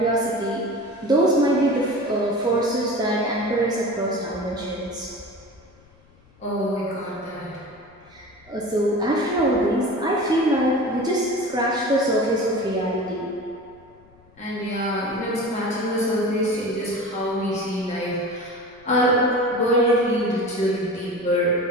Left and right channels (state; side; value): noise; left; rumble, 28 dB below the sound